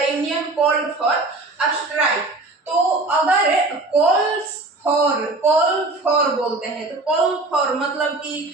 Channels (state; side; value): quieter; left; 3.1 dB